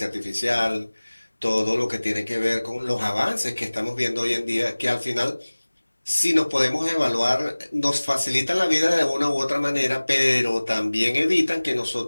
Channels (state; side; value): inverted; both; correlation -1.00